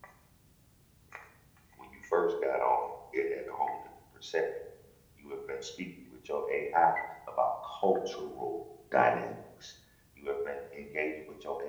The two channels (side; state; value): both; identical; correlation 1.00